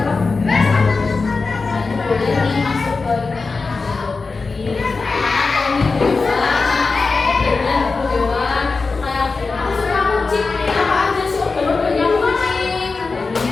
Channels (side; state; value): right; quieter; 4.2 dB